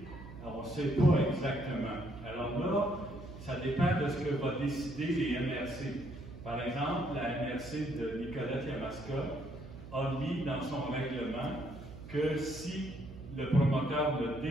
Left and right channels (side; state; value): right; noise; hum, 14 dB below the sound